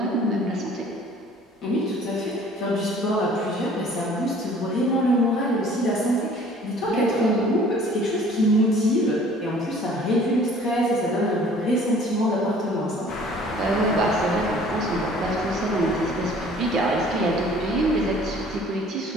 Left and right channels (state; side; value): normal; both; correlation 0.52